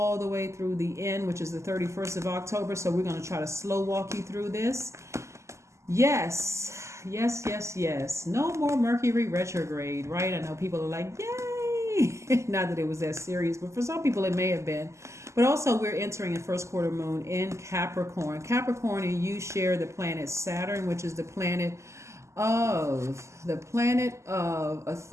the way through the end, which is the 31st of October. So we're going to try to slow walk you through this. Yes. No more Mercury retrograde, right? I know people are like, yay! Not that it was that serious, but for some people it may have been. But also we're entering a first quarter moon in Capricorn. Capricorn and you share the planet Saturn, which is the planet of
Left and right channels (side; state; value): left; late; 0.14 ms